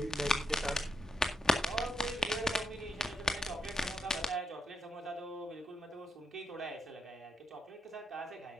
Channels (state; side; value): normal; both; correlation 0.81